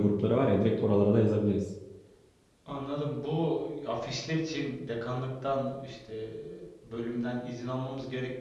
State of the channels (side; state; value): both; identical; correlation 1.00